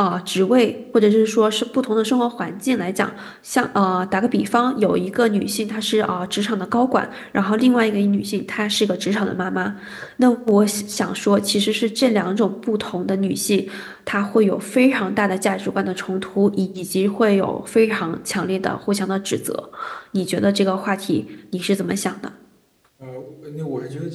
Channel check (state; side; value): identical; both; correlation 1.00